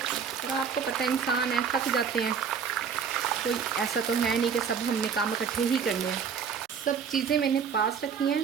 आपको पता है इंसान है, थक जाते हैं। कोई ऐसा तो है नहीं कि सब हमने काम इकट्ठे ही करने हैं। सब चीज़ें मैंने पास रखी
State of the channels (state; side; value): quieter; left; 6.8 dB